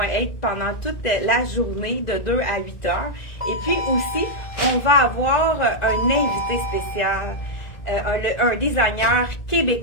être pendant toute la journée de 2 à 8 heures. Et puis aussi, on va avoir un invité spécial, un designer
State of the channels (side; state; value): right; late; 2.0 ms